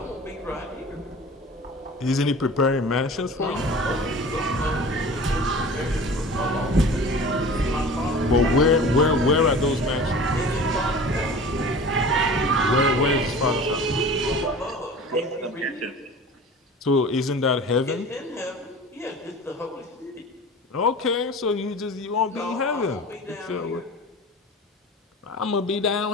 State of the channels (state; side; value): normal; both; correlation 0.39